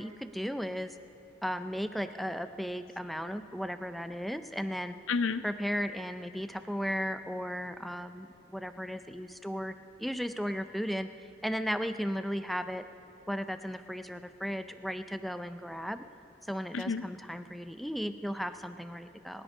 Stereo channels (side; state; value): both; normal; correlation 0.89